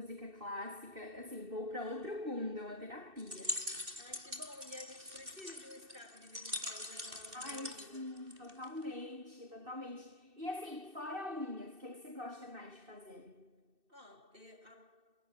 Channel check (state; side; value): late; left; 2.6 ms